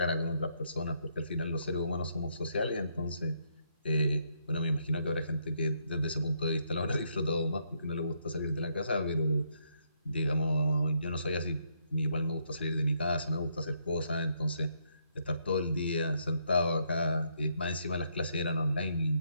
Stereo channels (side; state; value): both; inverted; correlation -0.75